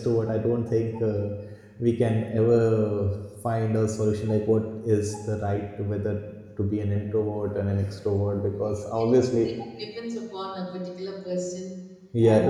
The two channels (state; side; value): identical; both; correlation 1.00